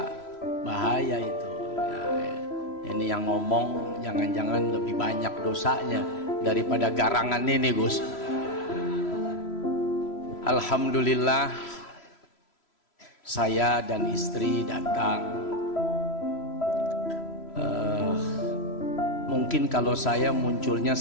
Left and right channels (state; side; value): late; right; 3.0 ms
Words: bahaya itu. Ini yang ngomong jangan-jangan lebih banyak dosanya daripada garangan ini Gus. Alhamdulillah saya dan istri datang. Mungkin kalau saya munculnya